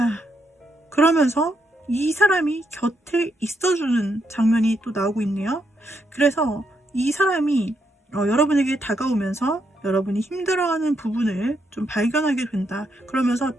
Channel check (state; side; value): normal; both; correlation 0.79